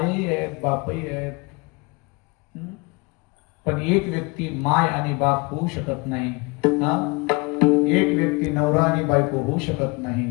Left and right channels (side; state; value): right; quieter; 27.8 dB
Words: आहेत, बापही आहेत. पण एक व्यक्ती माय आणि बाप होऊ शकत नाही. हा, एक व्यक्ती नवरा आणि बायको होऊ शकत